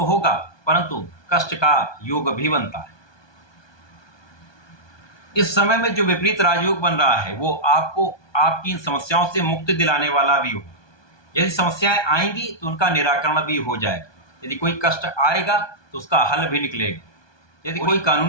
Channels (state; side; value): late; right; 1.2 ms